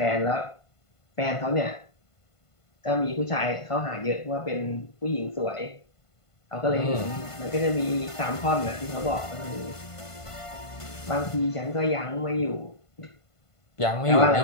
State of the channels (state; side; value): late; right; 1.5 ms